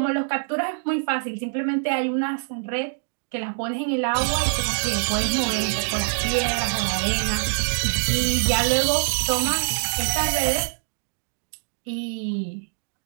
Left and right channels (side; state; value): left; silent; digital silence